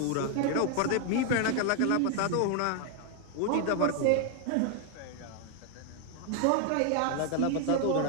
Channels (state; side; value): different; both; correlation 0.00